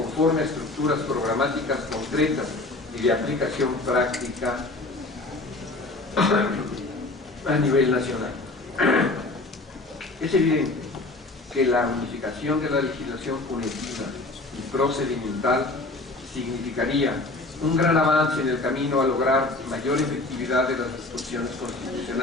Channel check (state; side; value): quieter; right; 3.0 dB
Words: a estructuras programáticas concretas y de aplicación práctica a nivel nacional. Es evidente que la unificación de la legislación punitiva y procedimental significaría un gran avance en el camino a lograr mayor efectividad de las disposiciones